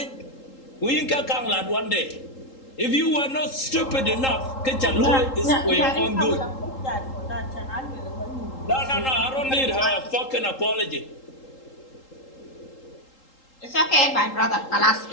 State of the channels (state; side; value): late; right; 3.8 ms